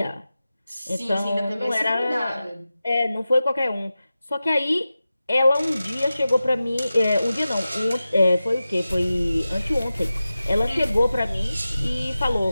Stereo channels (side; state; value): both; inverted; correlation -0.94